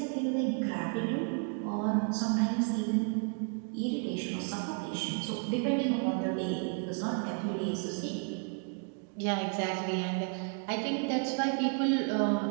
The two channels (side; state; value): left; quieter; 39.3 dB